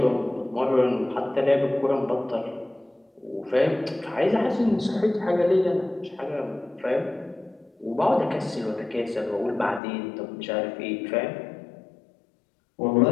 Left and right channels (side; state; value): right; drops out; at 9.8 s